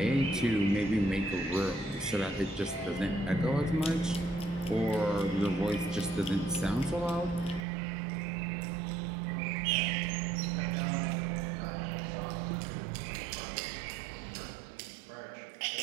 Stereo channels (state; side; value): drops out; left; at 7.7 s